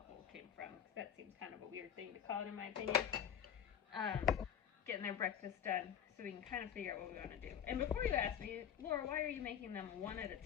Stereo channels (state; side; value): quieter; right; 8.9 dB